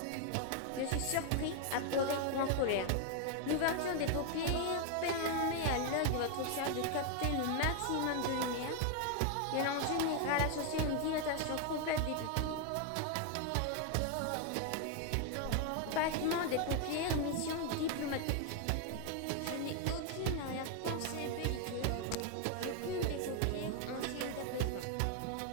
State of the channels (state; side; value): different; both; correlation 0.00